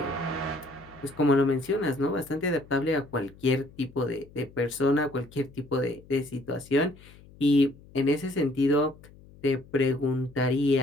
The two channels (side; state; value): left; noise; hum, 23 dB below the sound